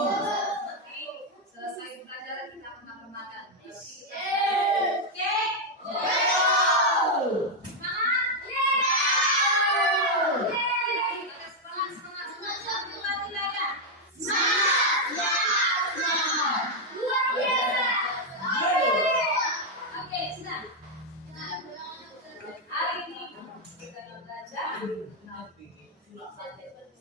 selesai pelajaran kita akan makan. Oke. baca.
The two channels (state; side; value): normal; both; correlation 0.01